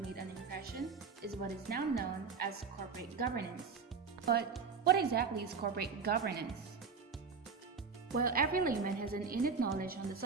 made an impression is what is now known as corporate governance. But what exactly is corporate governance? While every layman has an innate knowledge on the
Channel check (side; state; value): left; quieter; 5.4 dB